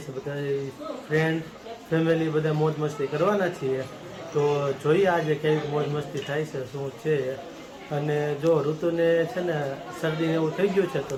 છે. બધા ફ્રેન્ડ ફેમિલી બધા મોજ મસ્તી કરવાના છીએ. તો જોઈએ આજે કેવી મોજ મસ્તી થાય છે, શું છે. અને જો ઋતુને છે ને શરદી એવું થઈ ગયું છે તો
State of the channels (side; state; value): both; identical; correlation 1.00